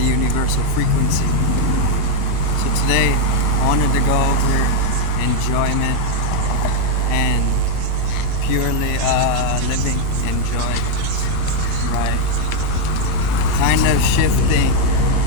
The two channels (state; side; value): different; both; correlation 0.00